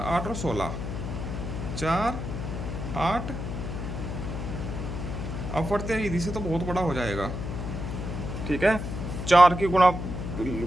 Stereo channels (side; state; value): left; noise; hum, 5 dB below the sound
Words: 8 और 16, 4, 8 अपवर्ते विधि से तो बहुत बड़ा हो जाएगा। ठीक है, 4 की गुणा